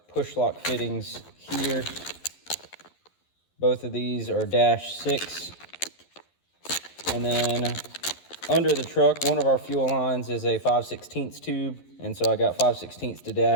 push lock fittings here. Both of these are -6, and then under the truck, one of our fuel lines is a 5/16 tube, and so I got 5/16 to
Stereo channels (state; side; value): late; right; 11 ms